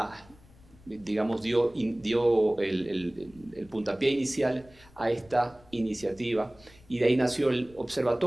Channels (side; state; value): left; noise; rumble, 26 dB below the sound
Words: digamos, dio el puntapié inicial a esta iniciativa, y de ahí nació el